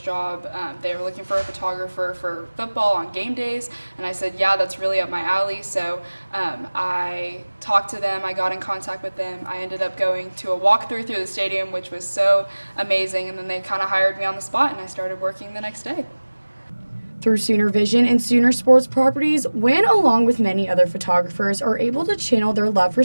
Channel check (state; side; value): inverted; both; correlation -1.00